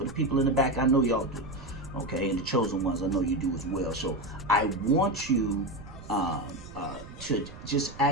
the people in the back, I know y'all do. Okay, and the chosen ones, I know you do as well. So I want you to just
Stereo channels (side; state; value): right; noise; rumble, 15 dB below the sound